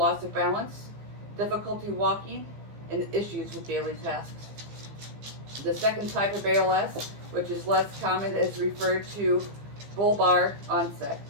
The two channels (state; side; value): late; left; 15 ms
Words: of balance, difficulty walking, and issues with daily tasks. The second type of ALS, which is less common, is referred to bulbar onset.